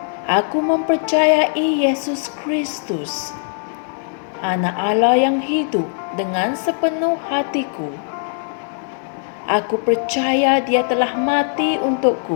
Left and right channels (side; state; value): right; silent; digital silence